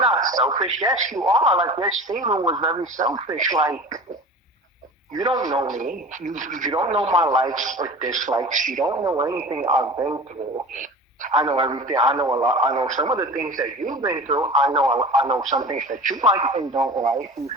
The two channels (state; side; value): normal; both; correlation 0.36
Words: selfish." Yes, you are. Like your statement was very selfish. Like you don't know me. You don't know my likes or dislikes. You don't know anything I've been through. I know everything. I know a lot. I know some of the things that you've been through. I know some things that you like and don't like. You